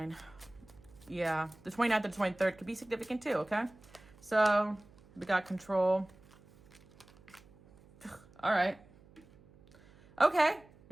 Yeah, the 29th and 23rd could be significant too, okay? So, we got control. All right. Okay,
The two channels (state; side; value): noise; right; hum, 25 dB below the sound